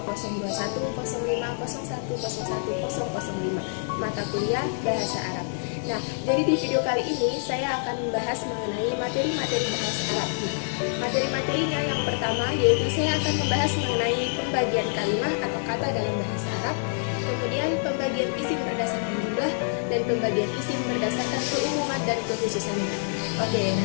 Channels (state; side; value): silent; right; digital silence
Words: mata kuliah Bahasa Arab. Nah, jadi di video kali ini saya akan membahas mengenai materi-materi bahasa Arab. Materi-materinya yang pertama yaitu saya akan membahas mengenai pembagian kalimat atau kata dalam bahasa Arab, kemudian pembagian isim berdasarkan jumlah, dan pembagian isim berdasarkan keumuman dan kekhususannya. Oke,